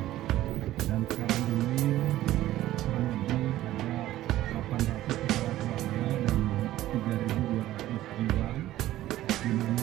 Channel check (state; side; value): quieter; left; 14.5 dB